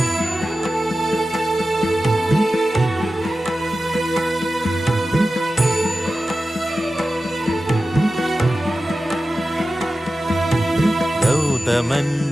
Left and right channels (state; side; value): normal; both; correlation 0.94